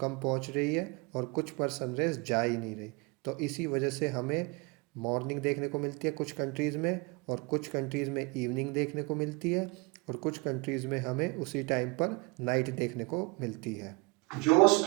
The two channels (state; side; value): quieter; left; 28.1 dB